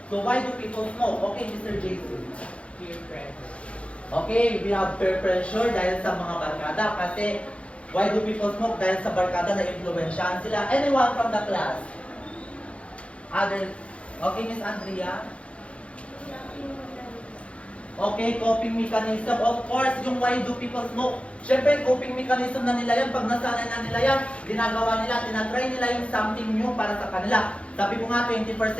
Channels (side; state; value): right; late; 0.061 ms